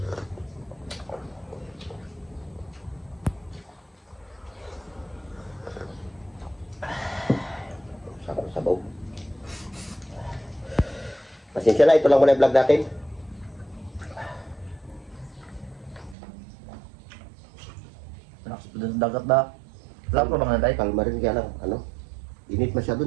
Sabaw. Pasensya na, ito lang muna yung vlog natin. Lakas pa din sa dagat na. Wala pa bang naday? Kalma rin kaya lang, ano? Init masyado,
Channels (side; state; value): left; drops out; at 16.2 s